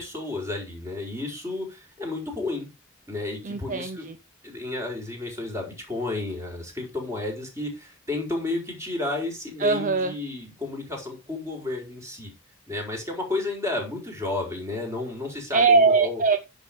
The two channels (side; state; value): both; normal; correlation 0.01